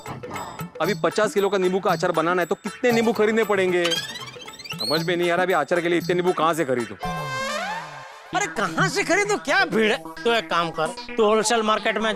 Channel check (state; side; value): identical; both; correlation 1.00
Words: अभी 50 किलो का नींबू का अचार बनाना है तो कितने नींबू खरीदने पड़ेंगे, समझ में नहीं आ रहा। अभी अचार के लिए इतने नींबू कहाँ से खरीदूं? अरे कहाँ से खरीदो, क्या भीड़ है? तो एक काम कर, तू होलसेल मार्केट में